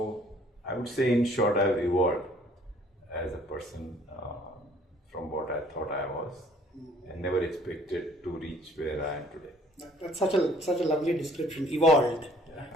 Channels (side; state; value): both; normal; correlation 0.57